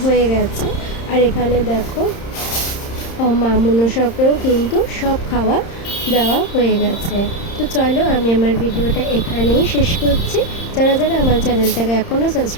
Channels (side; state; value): right; late; 30 ms